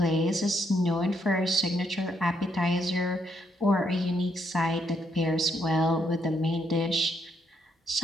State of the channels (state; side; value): normal; both; correlation 0.75